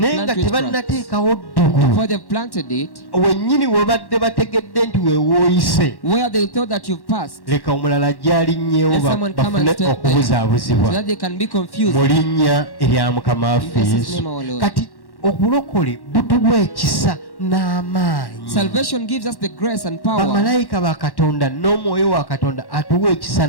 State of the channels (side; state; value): right; late; 1.1 ms